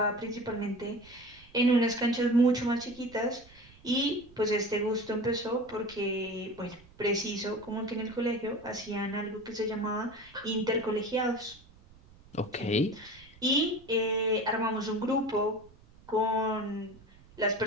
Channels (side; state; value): right; noise; rumble, 24 dB below the sound